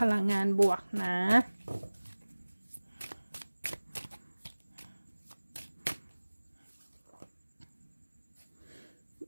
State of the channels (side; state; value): both; inverted; correlation -1.00